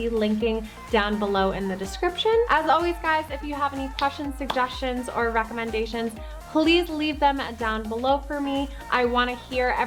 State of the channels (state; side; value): identical; both; correlation 1.00